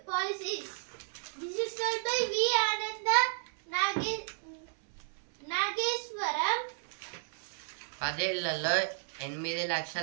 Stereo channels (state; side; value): silent; left; 56 dB below the other